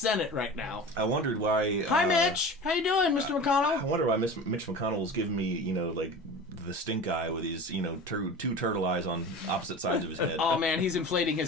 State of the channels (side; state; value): both; normal; correlation 0.34